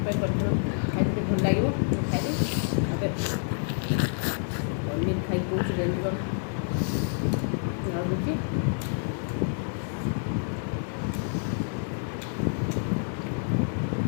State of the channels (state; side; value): silent; right; digital silence